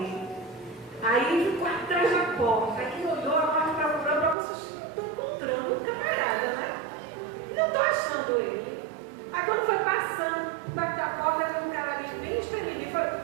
Aí ficou atrás da porta, aí olhou, a morte para vocês, estou encontrando um camarada, né? Não estou achando ele. Aí quando foi passando perto da porta, viu um cara ali bem espremido, falou,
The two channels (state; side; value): drops out; left; at 4.4 s